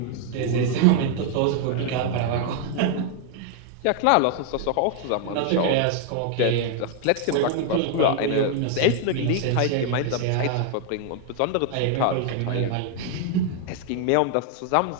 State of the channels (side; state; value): both; different; correlation 0.00